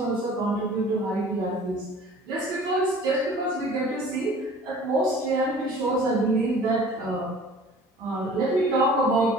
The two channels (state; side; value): normal; both; correlation 0.47